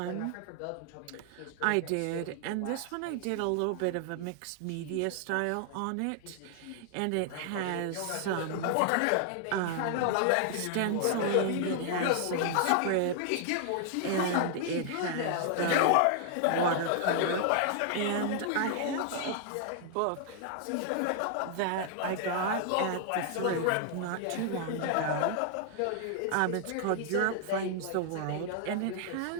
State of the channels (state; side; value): different; both; correlation 0.00